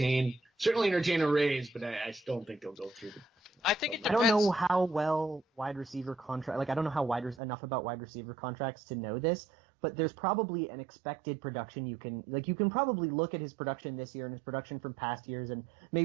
certainly entertain a raise, but I still don't think they'll go through. I think it I don't depends. know how well wide receiver contract. Like I don't know how enough about wide receiver contracts to know this, but there's probably an expected production you can probably look at his production this year and his production from past years and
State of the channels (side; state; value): left; drops out; at 7.4 s